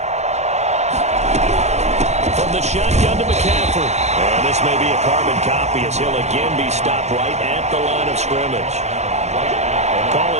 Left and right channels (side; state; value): left; late; 0.32 ms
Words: From the shotgun to McCaffrey. And this may be a carbon copy as he'll again be stopped right at the line of scrimmage. Call